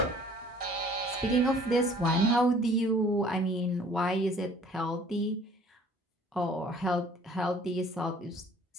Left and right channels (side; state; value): both; normal; correlation 0.54